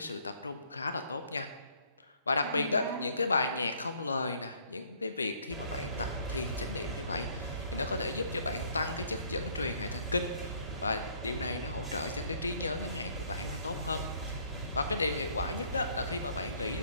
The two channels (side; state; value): both; inverted; correlation -0.61